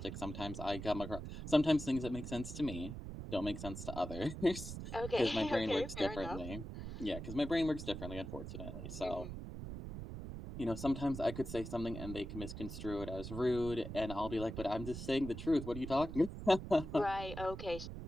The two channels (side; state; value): right; noise; rumble, 8 dB below the sound